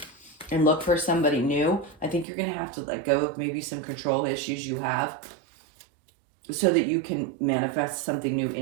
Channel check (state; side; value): drops out; left; at 2.2 s